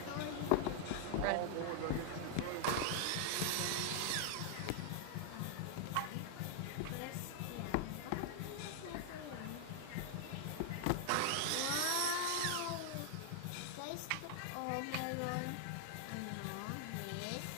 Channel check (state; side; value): different; both; correlation 0.00